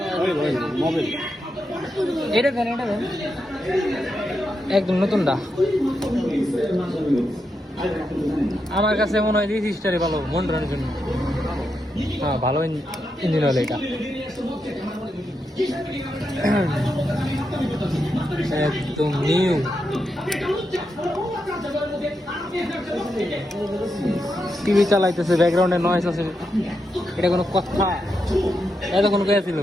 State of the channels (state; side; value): normal; both; correlation 0.85